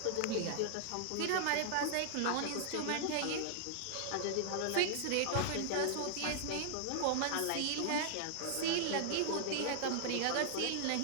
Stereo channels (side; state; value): both; different; correlation 0.00